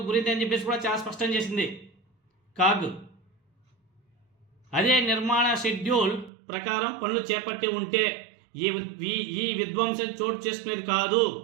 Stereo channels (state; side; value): drops out; left; at 6.3 s